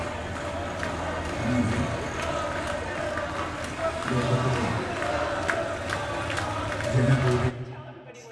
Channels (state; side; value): identical; both; correlation 1.00